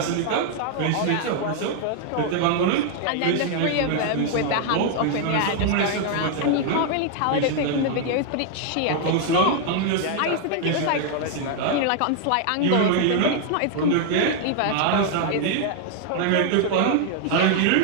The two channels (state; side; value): different; both; correlation 0.00